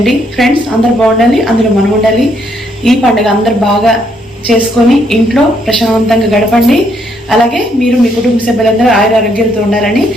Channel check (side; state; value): both; normal; correlation 0.72